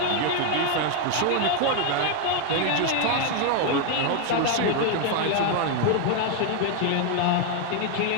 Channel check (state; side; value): different; both; correlation 0.01